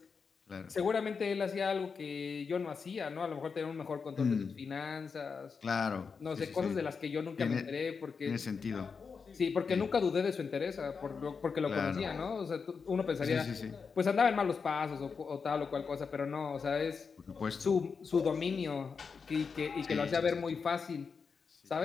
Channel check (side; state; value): right; quieter; 5.5 dB